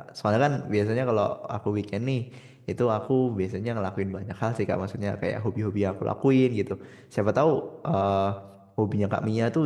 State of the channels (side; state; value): both; identical; correlation 1.00